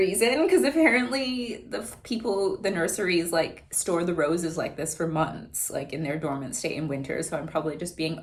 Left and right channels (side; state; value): both; identical; correlation 1.00